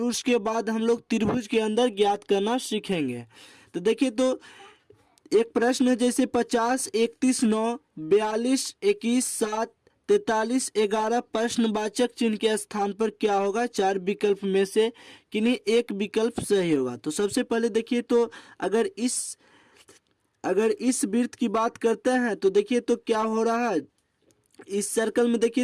उसके बाद हम लोग त्रिभुज के अंदर ज्ञात करना सीखेंगे। तो देखिए तो एक प्रश्न है, जैसे 50, 31, 9, 42, 21, 7, 43, 11 प्रश्नवाचक चिन्ह के स्थान पर क्या होगा? चार विकल्प में से किन्हीं एक विकल्प सही होगा। तो सबसे पहले देखिए तो अगर इस वृत्त की बात करते हैं तो देखिए तो क्या हो रहा है। इस सर्कल में देखिए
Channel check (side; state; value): both; identical; correlation 1.00